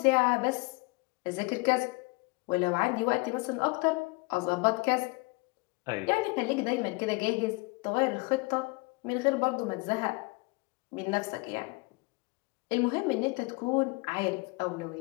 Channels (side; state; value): right; quieter; 26.8 dB